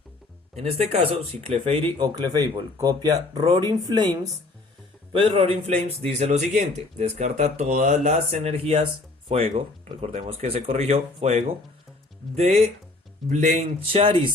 En este caso, si Clefairy o Clefable copia Roaring Flames, pues Roaring Flames dice lo siguiente: descarta todas las energías fuego, recordemos que se corrigió, fuego, de Blaine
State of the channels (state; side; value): quieter; right; 3.2 dB